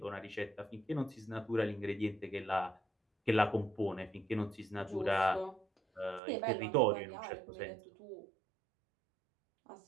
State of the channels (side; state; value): left; drops out; at 6.2 s